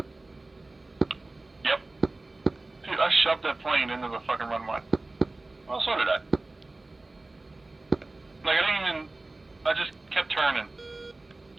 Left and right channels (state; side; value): quieter; left; 3.0 dB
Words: Yep. Dude, I shoved that plane into the fucking runway. Well, so did I. Like, I didn't even. I just kept turning.